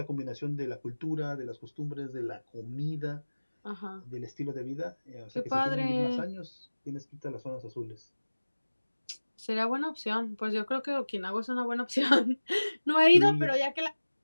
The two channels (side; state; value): both; inverted; correlation -1.00